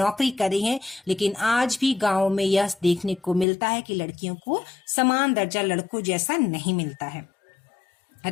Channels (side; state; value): right; drops out; at 3.5 s